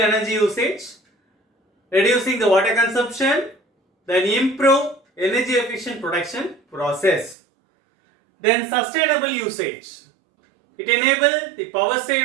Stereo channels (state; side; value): drops out; left; at 7.4 s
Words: usage, reducing the water consumption, then improve energy efficient production process. Then sustainable usage. It enables the power